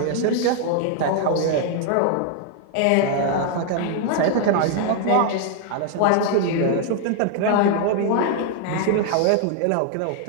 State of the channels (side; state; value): both; different; correlation 0.00